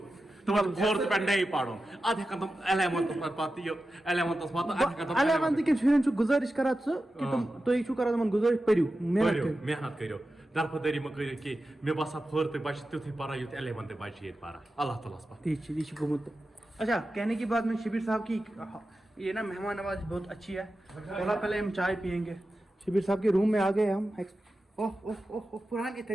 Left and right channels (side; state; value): both; normal; correlation 0.93